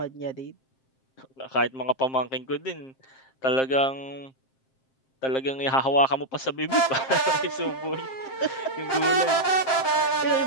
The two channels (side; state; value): right; late; 7.6 ms